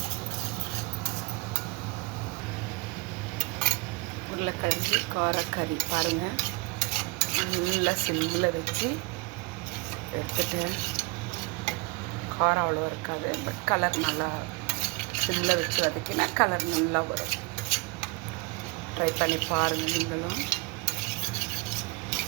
உருளைக்கிழங்கு காரக்கறி பாருங்கள், நல்லா சிம்மில் வச்சு எடுத்துட்டேன். காரம் அவ்வளோ இருக்காது, பட் கலர் நல்லா சிம்மில் வச்சு வதக்கினா கலர் நல்லா வரும். ட்ரை பண்ணி பாருங்கள் நீங்களும்.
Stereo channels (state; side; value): quieter; left; 28.7 dB